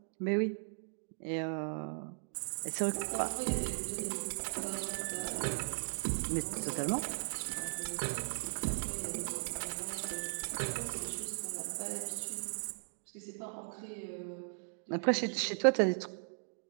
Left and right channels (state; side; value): silent; left; digital silence